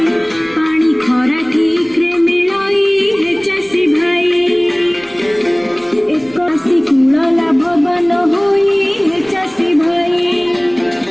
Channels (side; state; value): left; noise; rumble, 29 dB below the sound